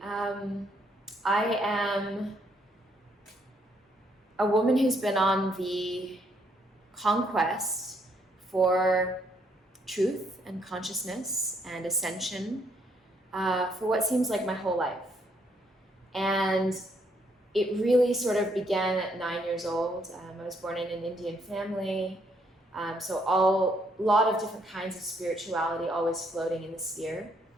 I am a woman who's been on the conquest for truth and consciousness and ascension for what seems like my whole life. And it really sort of began at 9 years old. I was born in an Indian family, so a lot of different kinds of spirituality always floating in the sphere.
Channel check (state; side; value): normal; both; correlation 0.71